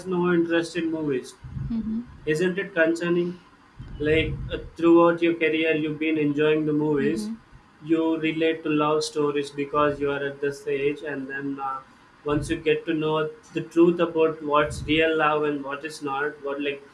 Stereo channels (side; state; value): both; identical; correlation 1.00